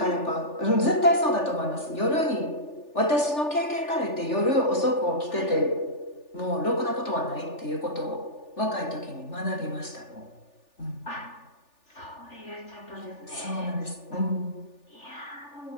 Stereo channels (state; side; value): late; right; 3.4 ms